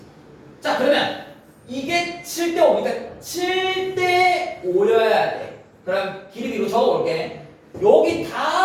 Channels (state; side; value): identical; both; correlation 1.00